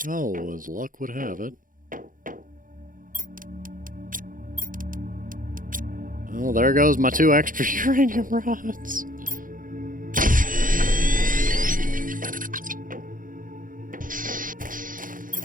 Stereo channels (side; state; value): left; late; 0.40 ms